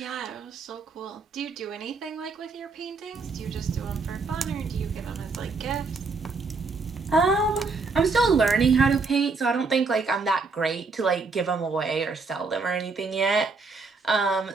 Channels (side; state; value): left; quieter; 4.2 dB